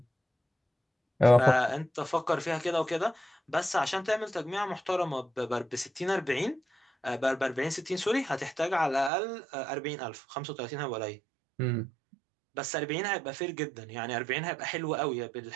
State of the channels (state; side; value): drops out; left; at 9.1 s